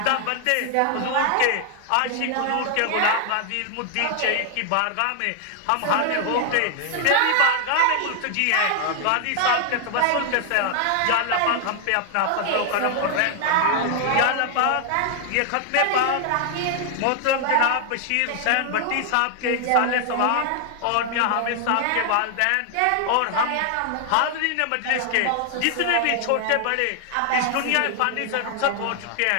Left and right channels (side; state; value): both; different; correlation 0.00